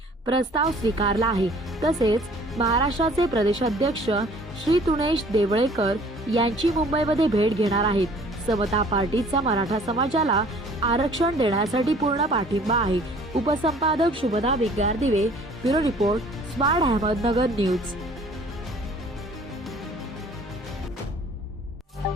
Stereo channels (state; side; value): normal; both; correlation 0.53